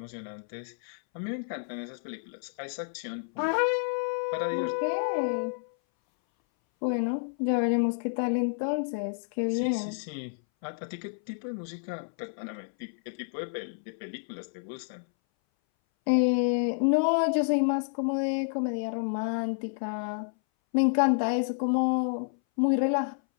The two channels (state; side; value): silent; right; 58 dB below the other